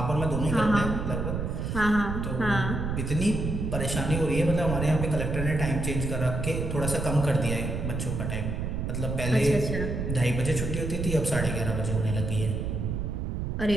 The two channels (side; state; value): right; noise; rumble, 2 dB below the sound